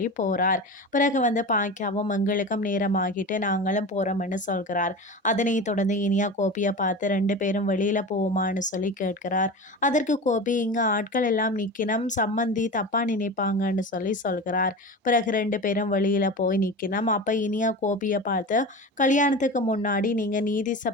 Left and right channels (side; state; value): both; normal; correlation 0.29